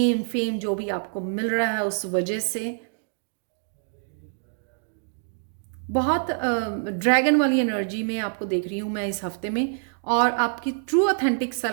फेम जो भी आपको मिल रहा है, उस वजह से बहुत ड्रैगन वाली एनर्जी में आपको देख रही हूँ मैं इस हफ्ते में। और आपकी ट्रू ऑथेंटिक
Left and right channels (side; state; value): left; silent; digital silence